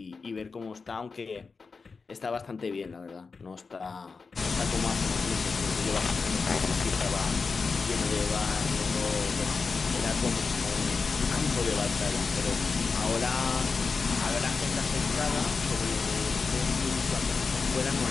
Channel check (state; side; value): quieter; right; 4.7 dB